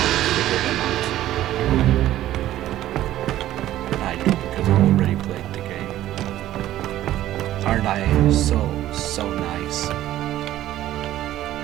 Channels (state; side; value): quieter; left; 13.7 dB